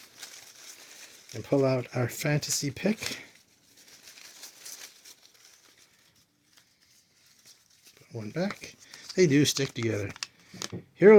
and pull out our fantasy pick. Put 1 back. They do stick together.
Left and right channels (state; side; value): identical; both; correlation 1.00